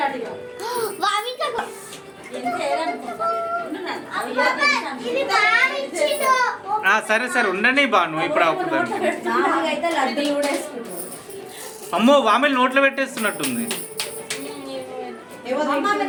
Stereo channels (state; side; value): identical; both; correlation 1.00